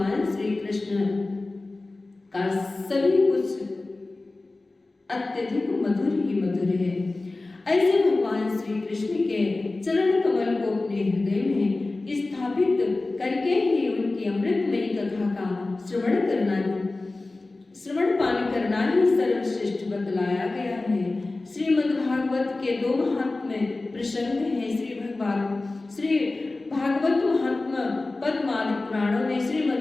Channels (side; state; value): right; quieter; 3.2 dB